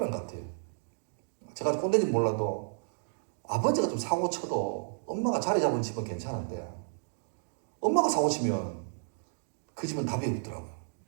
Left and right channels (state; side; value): silent; left; digital silence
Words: 것 같아요. 제가 꼰대인지 몰라도 아버지가 좀 사고 쳐도 엄마가 자리 잡은 집은 괜찮은데 엄마가 사고 치면 그 집은 답이 없더라고요.